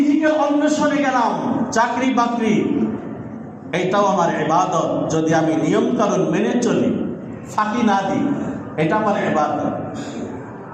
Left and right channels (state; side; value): identical; both; correlation 1.00